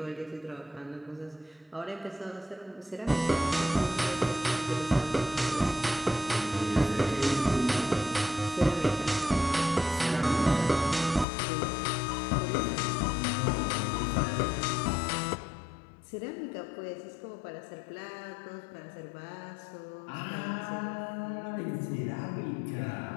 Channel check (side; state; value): right; drops out; at 11.2 s